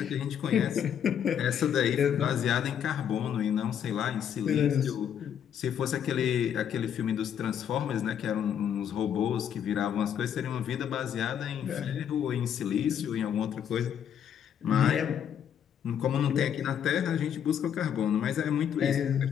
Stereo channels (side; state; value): right; quieter; 8.8 dB